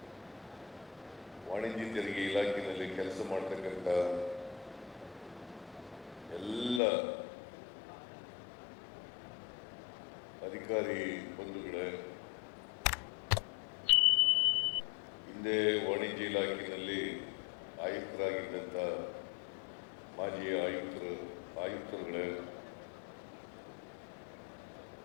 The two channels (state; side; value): drops out; right; at 6.8 s